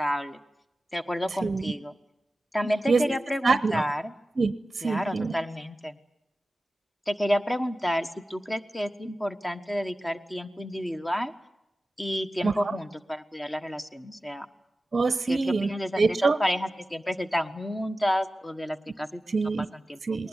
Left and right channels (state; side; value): normal; both; correlation 0.95